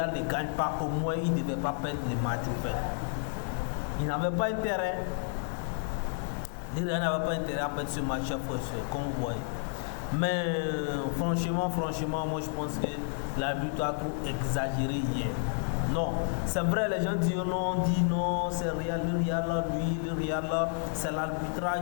ne gagne pas, au moins il ne devait pas perdre le match au fait. Il n'avait pas intérêt. Le Real n'avait pas intérêt à perdre ce match, chers frères et sœurs, comme vous voyez. Mais franchement, moi je pense que l'arbitre a trop exagéré hier. Non, c'est vrai, les gens disent non, c'est Real, le Real là, lui, le Real là, c'est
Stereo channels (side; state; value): right; silent; 57 dB below the other